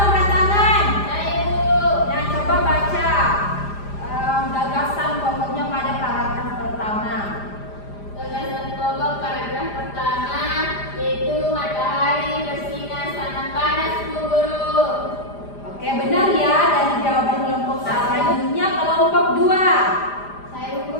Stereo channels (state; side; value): late; right; 5.0 ms